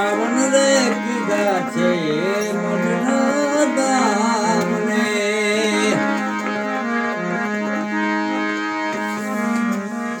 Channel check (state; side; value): identical; both; correlation 1.00